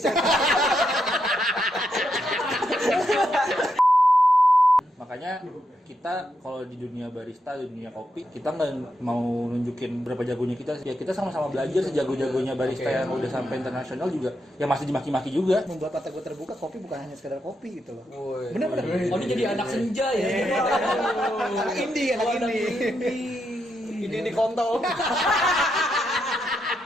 sana. Makanya kita kalau di dunia barista, di dunia kopi, kita nggak mau nunjukin berapa jagonya kita. Ya kita sama-sama belajar sejago-jagonya barista yang udah sampai internasional juga. Ya masih dimaki-maki juga. Membuat mata gue terbuka, kopi bukan hanya sekedar kopi gitu loh. Bener-bener. Oh, ini jadi anak senja ya. Anak indie. Ini kontol.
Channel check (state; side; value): normal; both; correlation 0.82